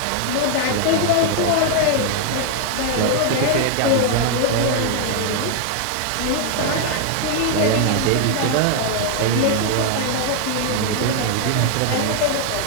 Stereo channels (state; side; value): different; both; correlation 0.00